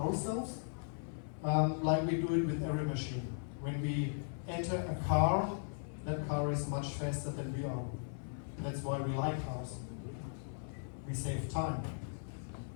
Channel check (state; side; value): silent; right; 53 dB below the other